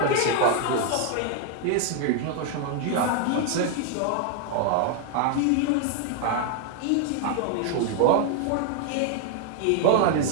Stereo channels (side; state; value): both; different; correlation 0.00